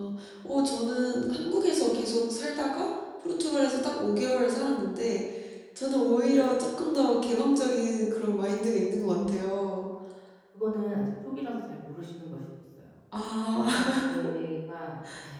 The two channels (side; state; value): both; identical; correlation 1.00